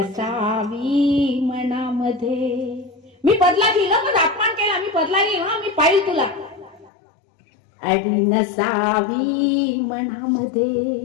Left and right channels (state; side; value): drops out; right; at 6.9 s